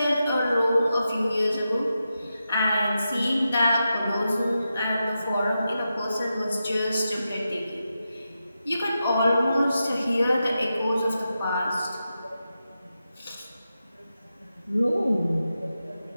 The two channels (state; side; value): inverted; both; correlation -0.89